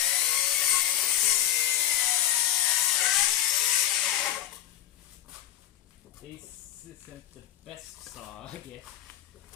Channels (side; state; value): right; quieter; 12.3 dB